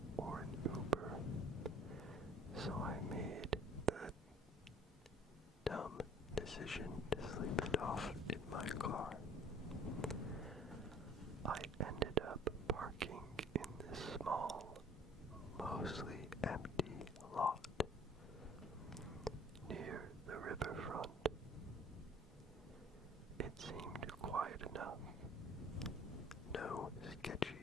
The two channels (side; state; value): both; normal; correlation 0.51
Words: or an Uber, so I made the dumb decision to sleep it off in my car. I ended up parking in this small, mostly empty lot near the riverfront. It seemed quiet enough. No